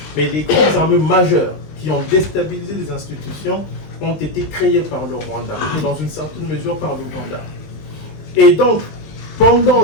mais les groupes armés majeurs qui ont déstabilisé les institutions, ont été créés par le Rwanda, et dans une certaine mesure par l'Ouganda. Et donc, pendant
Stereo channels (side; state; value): right; late; 20 ms